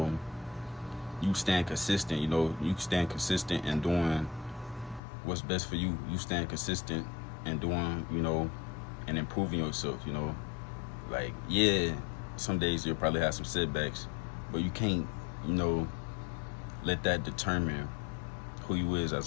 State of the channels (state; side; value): drops out; right; at 5.0 s